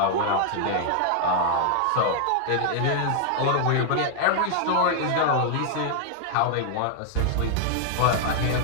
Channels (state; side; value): different; both; correlation 0.00